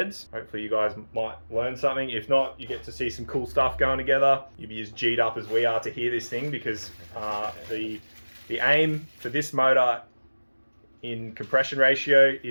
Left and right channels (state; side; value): inverted; both; correlation -1.00